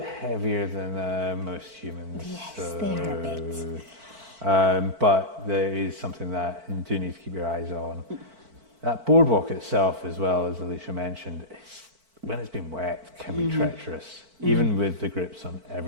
heavier than most humans. Yes, they are a bit. But there is something that you do need to keep your eyes on. That boardwalk itself, as well, as Alicia mentioned, when it's been wet, can be treacherous, even with the grips on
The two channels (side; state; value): left; late; 4.5 ms